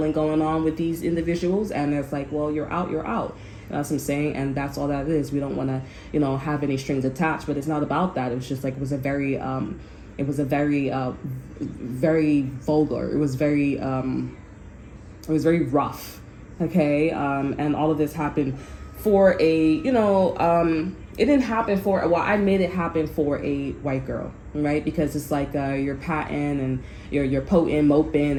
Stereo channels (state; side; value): identical; both; correlation 1.00